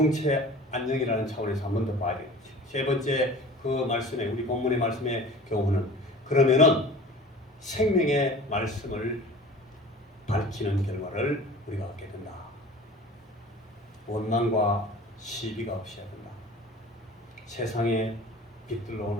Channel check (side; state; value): both; normal; correlation 0.42